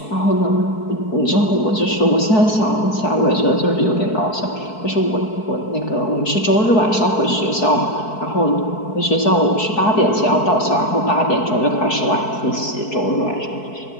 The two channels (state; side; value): late; right; 4.6 ms